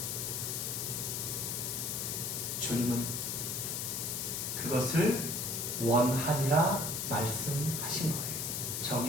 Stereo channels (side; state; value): left; noise; hiss, 2 dB below the sound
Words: 주님은 그것을 원한이라 말씀하신 거예요.